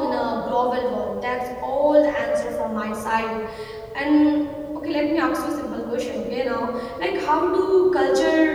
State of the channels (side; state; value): both; identical; correlation 1.00